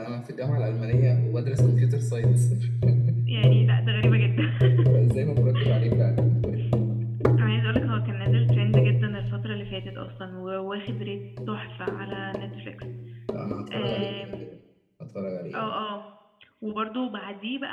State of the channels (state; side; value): identical; both; correlation 1.00